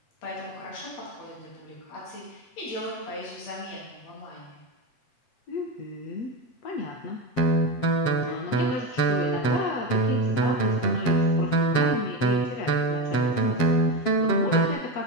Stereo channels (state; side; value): late; right; 7.5 ms